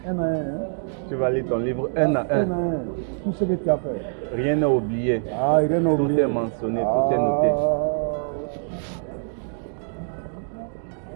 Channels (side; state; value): left; silent; digital silence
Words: Un à un. Tu vas lire ton livre un à un. Tout ce que tu as fait. Rien n'est oublié. Ah, rien n'est oublié. Tout est mentionné, tout est noté.